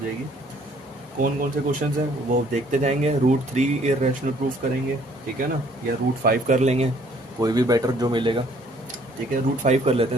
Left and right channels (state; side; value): normal; both; correlation 0.61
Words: कौन कौन से क्वेश्चन हैं वो देखते जाएंगे। रूट 3 इर्रेशनल प्रूफ करेंगे, ठीक है ना, या रूट 5 कर लेंगे, कोई भी बेटर जो मिलेगा, ठीक है। रूट 5 कर लेते